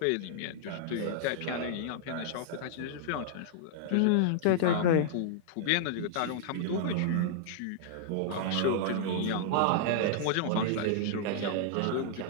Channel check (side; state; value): both; different; correlation -0.01